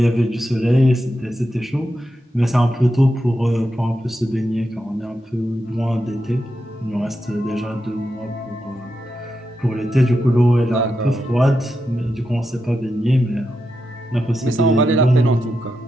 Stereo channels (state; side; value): normal; both; correlation 0.87